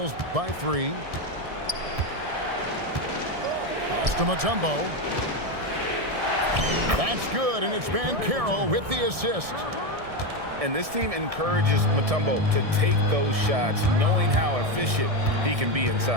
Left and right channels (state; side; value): late; left; 1.6 ms